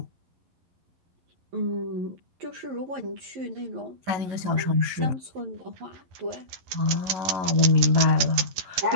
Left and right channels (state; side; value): late; left; 12 ms